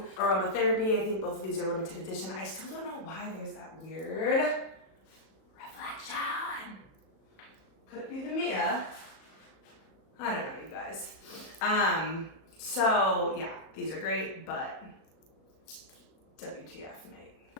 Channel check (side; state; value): right; late; 37 ms